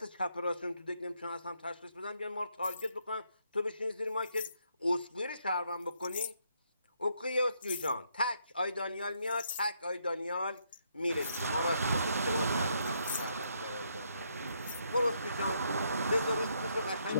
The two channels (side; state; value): both; inverted; correlation -0.74